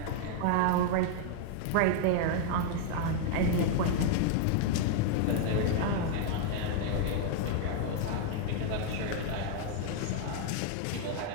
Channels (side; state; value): both; different; correlation 0.00